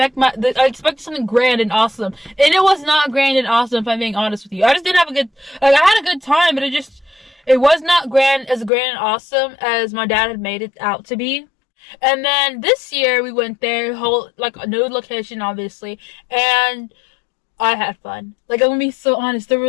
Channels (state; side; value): drops out; right; at 8.7 s